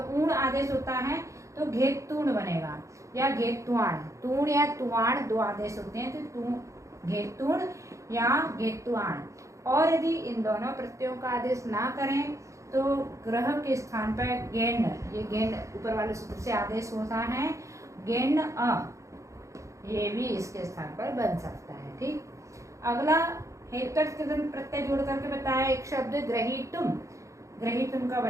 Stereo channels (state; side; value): late; left; 0.15 ms